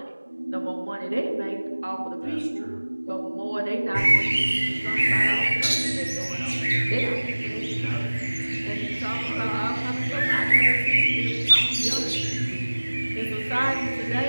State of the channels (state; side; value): inverted; both; correlation -1.00